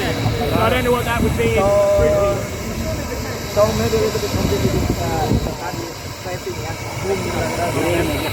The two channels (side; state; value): both; identical; correlation 1.00